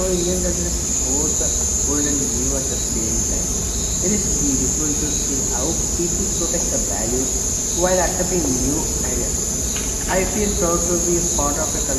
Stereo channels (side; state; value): both; identical; correlation 1.00